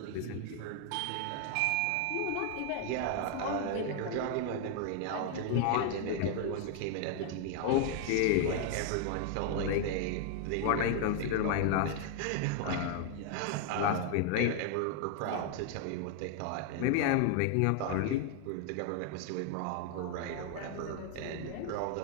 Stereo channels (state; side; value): different; both; correlation 0.00